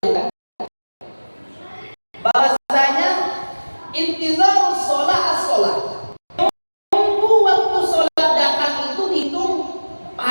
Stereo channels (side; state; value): both; inverted; correlation -1.00